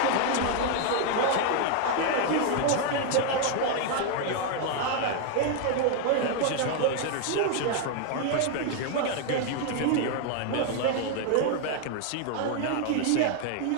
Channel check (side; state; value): both; different; correlation 0.00